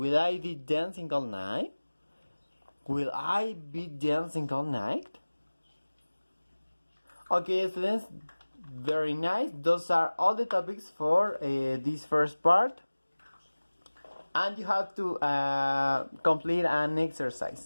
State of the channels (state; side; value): inverted; both; correlation -1.00